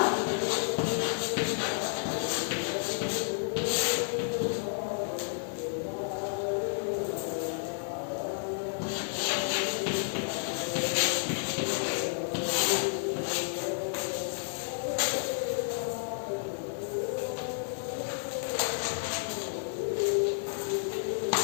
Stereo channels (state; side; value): silent; right; digital silence